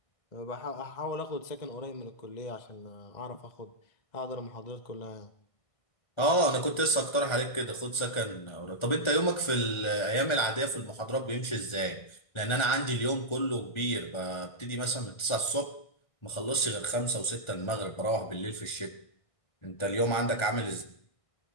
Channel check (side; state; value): right; late; 1.4 ms